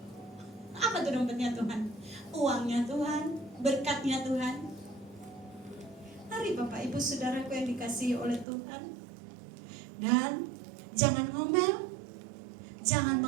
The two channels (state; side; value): drops out; left; at 8.5 s